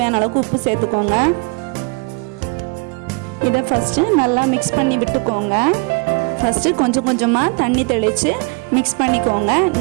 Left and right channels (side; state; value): left; quieter; 30.8 dB